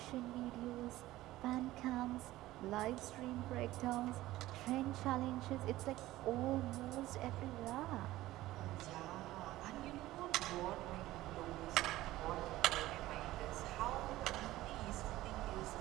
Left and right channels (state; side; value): quieter; left; 16.4 dB